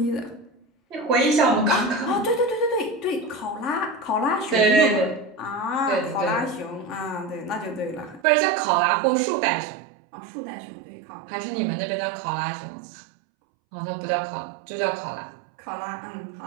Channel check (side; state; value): left; drops out; at 8.2 s